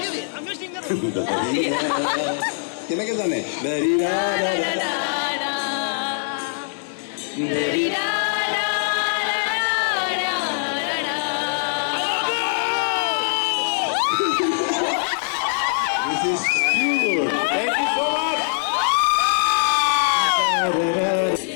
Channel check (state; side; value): silent; right; digital silence